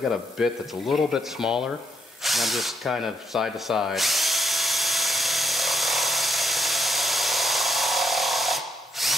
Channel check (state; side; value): normal; both; correlation 0.78